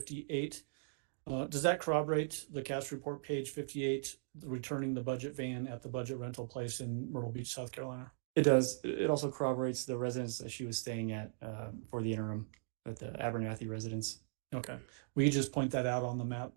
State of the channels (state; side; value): silent; left; digital silence